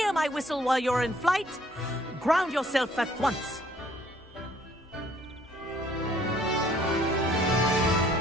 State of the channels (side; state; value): both; normal; correlation 0.61